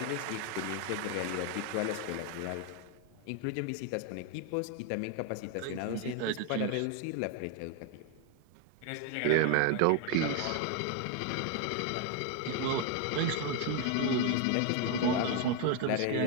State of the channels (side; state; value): both; different; correlation 0.01